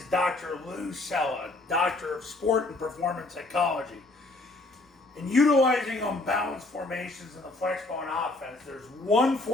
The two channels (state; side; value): quieter; right; 3.0 dB